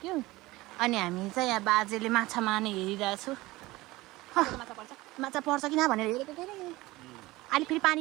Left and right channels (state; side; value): quieter; left; 19.7 dB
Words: अनि हामी चाहिँ यहाँ बाजेले माछा मार्ने हेरिरहेको छु माछा पर्छ कि न भनेर हेरेको के अहिले फेरि